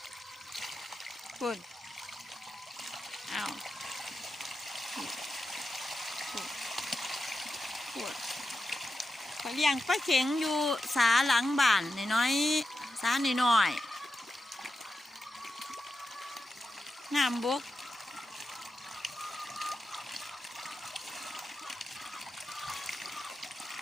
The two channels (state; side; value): normal; both; correlation 0.89